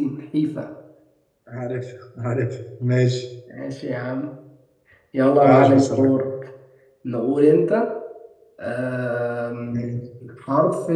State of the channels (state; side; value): identical; both; correlation 1.00